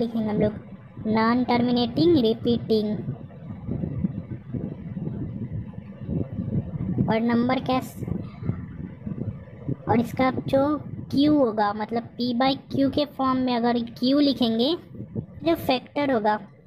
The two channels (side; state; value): both; identical; correlation 1.00